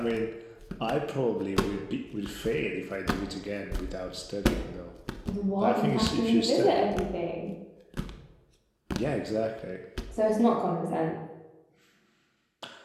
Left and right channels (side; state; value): both; identical; correlation 1.00